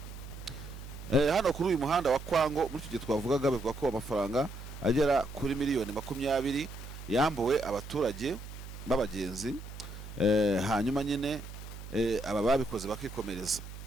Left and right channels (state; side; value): noise; right; hum, 12 dB below the sound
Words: Hano kuri uyu muhanda wa Kwango muri icyo gihe twavugaga, bivuga ko amafaranga agera kuri miliyoni 20 yambuwe abaturage b'abagenzi. Hanyuma nyine aba babikoze bakikomereza.